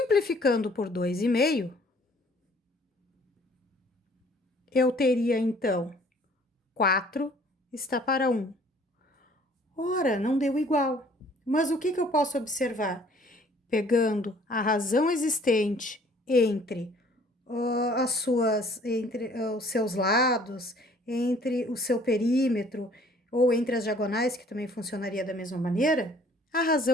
por 2,5, eu teria, então, 4 está para 1. Ora, não deu igual. Mas o que eu posso observar? Pegando a razão existente entre os seus lados, entre o seu perímetro ou entre as diagonais, que também funcionaria da mesma maneira, A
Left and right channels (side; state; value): both; normal; correlation 0.56